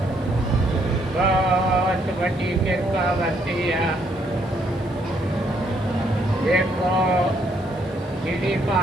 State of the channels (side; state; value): left; noise; hiss, 30 dB below the sound